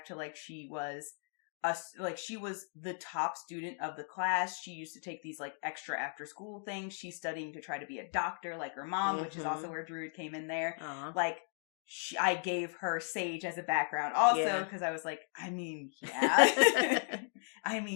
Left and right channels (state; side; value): silent; right; 54 dB below the other